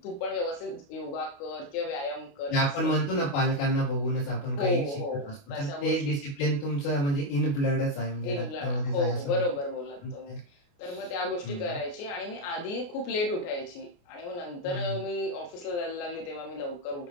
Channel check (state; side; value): late; right; 28 ms